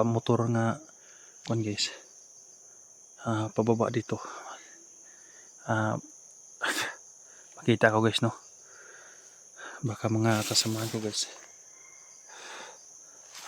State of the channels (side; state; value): both; identical; correlation 1.00